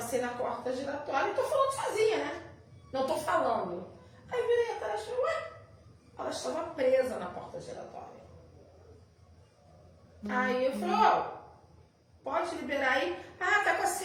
na porta giratória e tô falando sozinha, né? Não tô falando. Aí virei atrás e falei, ué? Ela estava presa na porta giratória. Aí eu falei, pode liberar aí? Ah, tá com a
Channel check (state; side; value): identical; both; correlation 1.00